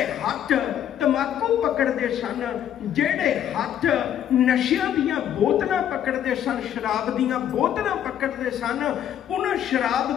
हथ तंबाकू पकड़ते सन, जेड़े हथ नशिया दियां बोतलां पकड़ते सन, शराब दियां बोतलां पकड़ते सन, उन्हां शराब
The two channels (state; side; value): quieter; right; 10.2 dB